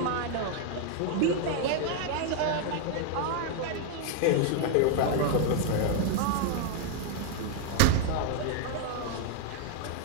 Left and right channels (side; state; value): both; different; correlation 0.00